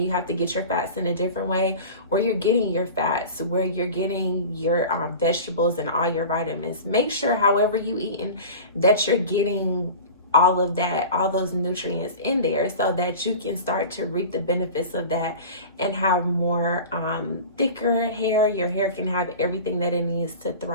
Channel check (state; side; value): inverted; both; correlation -0.35